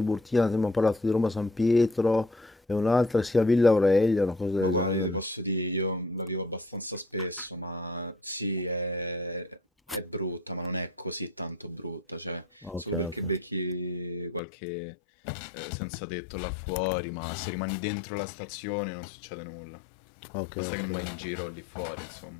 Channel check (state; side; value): drops out; right; at 14.4 s